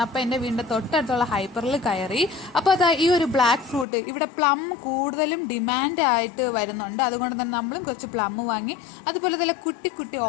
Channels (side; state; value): right; drops out; at 3.9 s